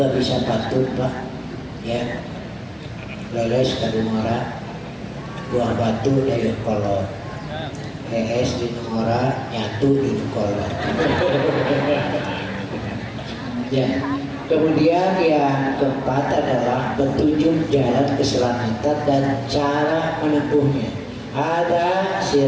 bisa patuh Pak. Ya. Leles kadumara buah batu dari kolot, es di nomora nyatu di kolot. Ya, kemudian yang keempat adalah petunjuk jalan keselamatan dan cara menempuhnya. Ada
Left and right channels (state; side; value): identical; both; correlation 1.00